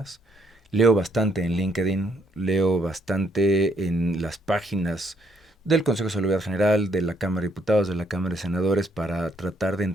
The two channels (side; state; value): both; normal; correlation 0.71